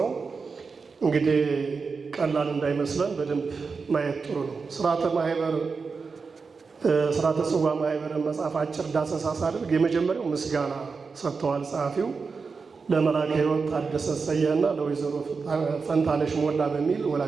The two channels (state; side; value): quieter; left; 4.9 dB